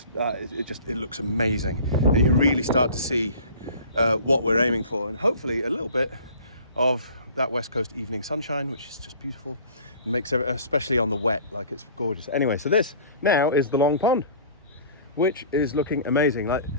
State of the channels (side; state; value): both; inverted; correlation -0.46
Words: looks amazing, and you can really start to see what we're aiming for, and hopefully a little bit of that West Coast evening sunshine, which is just beautiful and makes it, especially on the wet, like it's gorgeous. Anyway, so this now is the long pond, which is looking amazing. Like